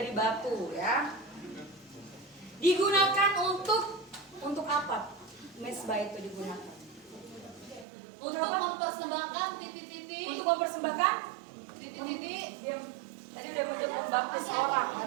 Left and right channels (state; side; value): drops out; left; at 7.9 s